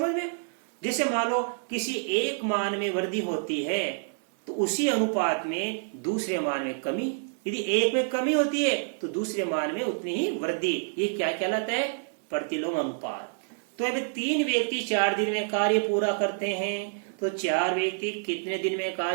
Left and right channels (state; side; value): silent; left; 59 dB below the other